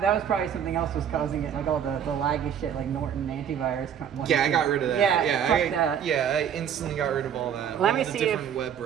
was probably something else was causing it, like all the laggy shit, like Norton antivirus. Yeah, I got rid of that. fuck that. I instantly got rid of all that. Let all me the see different web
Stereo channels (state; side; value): quieter; left; 8.7 dB